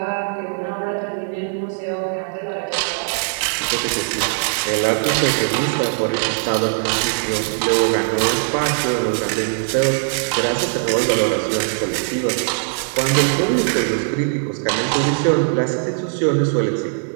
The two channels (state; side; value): silent; left; digital silence